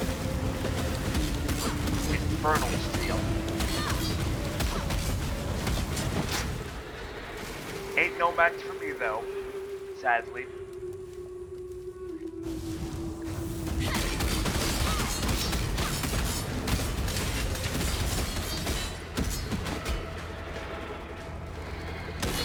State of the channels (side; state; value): both; identical; correlation 1.00